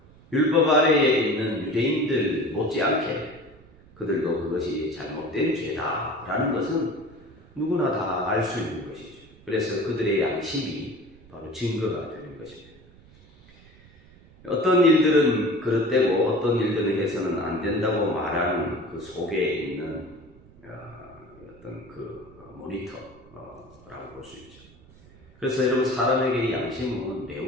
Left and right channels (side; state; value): right; noise; rumble, 25 dB below the sound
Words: 율법 아래에 있는 유대인들 못지않게 그들도 그것이 잘못된 죄다라는 것은 누구나 다 알 수 있는 것이죠. 그래서 그들의 양심이 바로 증거가 되는 것입니다. 어떤 일들은 그릇되고 어떤 일들은 해서는 안 된다고 말하는 그 속에 있는 어떤 그 모니터라고 볼 수 있죠. 그래서 여러분 사람에게 양심은